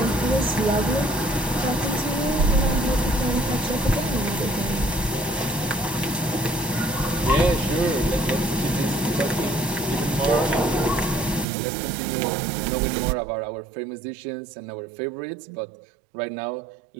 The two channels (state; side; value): drops out; left; at 11.5 s